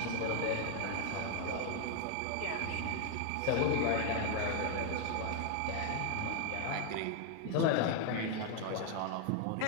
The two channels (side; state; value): both; different; correlation 0.00